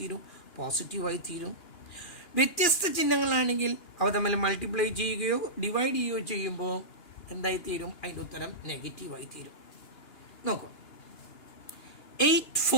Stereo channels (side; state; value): right; late; 2.4 ms